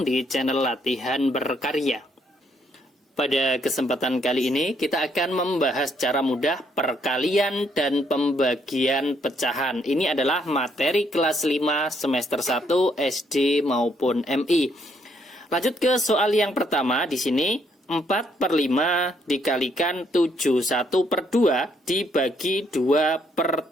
di channel Latihan Berkarya. Pada kesempatan kali ini kita akan membahas cara mudah perkalian dan pembagian pecahan. Ini adalah materi kelas 5 semester 1 SD maupun MI. Lanjut ke soal yang pertama. Di sini 4/5 dikalikan 71/2 dibagi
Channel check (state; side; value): normal; both; correlation 0.71